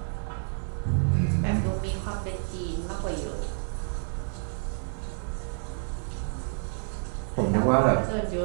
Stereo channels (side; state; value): left; silent; digital silence